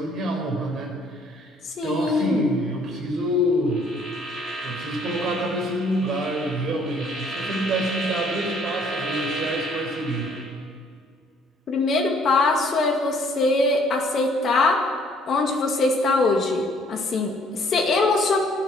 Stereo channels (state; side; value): normal; both; correlation 0.61